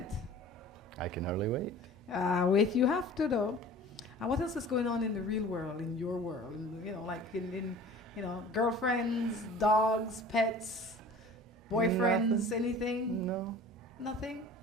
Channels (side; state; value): both; normal; correlation 0.44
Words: I can hardly wait. Wait, you have to, though. And what else is going on in the real world, in your world? In girlfriends, dogs, pets, boyfriends, anything? No. Nothing?